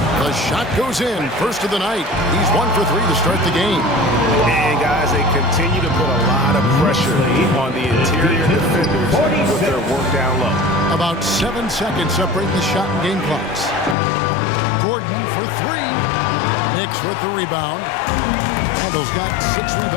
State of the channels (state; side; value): drops out; right; at 14.0 s